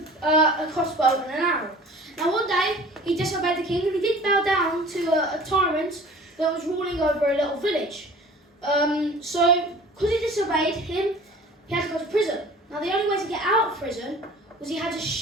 a crossbow and an arrow. Now, one day, he disobeyed the king, and he did bow down to a tyrant that was ruling over a little village. So, because he disobeyed him, he had to go to prison. Now, the only way to get out of prison was he had to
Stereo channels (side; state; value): both; normal; correlation 0.45